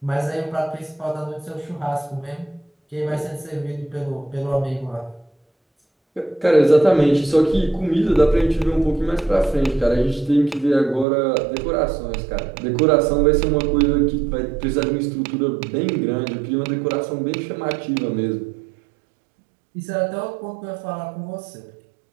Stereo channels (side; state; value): left; drops out; at 11.1 s